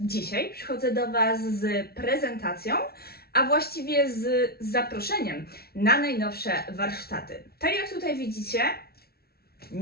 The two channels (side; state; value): right; late; 0.45 ms